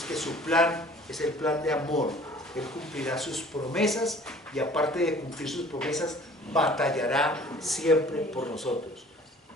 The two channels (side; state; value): both; normal; correlation 0.50